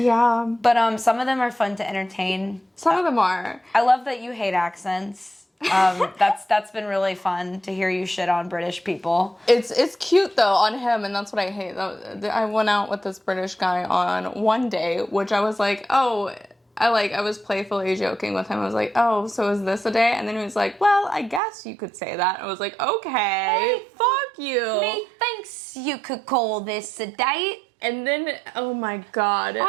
But some of them are fun to entertain. Some of them are. I love that you hate accents. That's been really fun to hear you shit on British people. It's cute though on him, and that's what I hate. I went out with this British guy on one day, which I was like, oh, I was playfully joking with him. I was like, oh, so is this a day? And then he was like, well, I guess you could say that. I was like, okay, hey, fuck you. Methinks you could call this a date. And then, oh my god.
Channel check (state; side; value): drops out; left; at 21.4 s